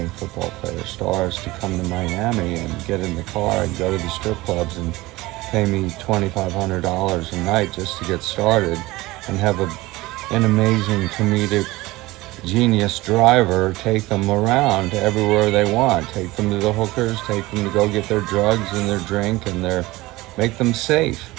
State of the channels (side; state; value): left; quieter; 19.7 dB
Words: and football player stars to come to Miami and get in the car and go to the strip clubs and pay me $2,500 a night just to get started and have an amazing comedic genius driver take them around everywhere they want. Take them to the hookers, take them to go get their drugs and their drink and make them safe.